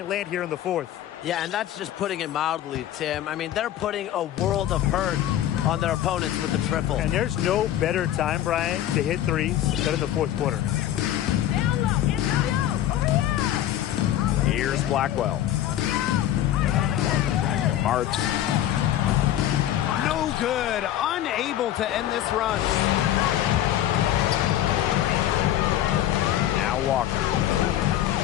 land here in the fourth. Yeah, and that's just putting it mildly, Tim. I mean, they're putting a world of hurt on their opponents with the triple. And there's no better time, Brian, to hit threes than in the fourth quarter. Here's Blackwell. Marks. No good. Unable to end this run. Now Walker.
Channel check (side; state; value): right; quieter; 12.1 dB